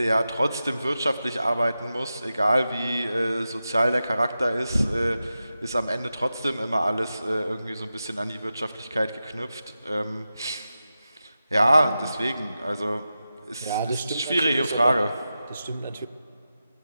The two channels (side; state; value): both; inverted; correlation -0.92